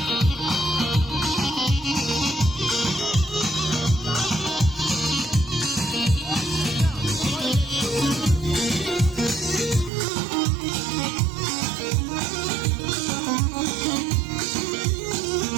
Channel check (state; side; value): drops out; left; at 9.9 s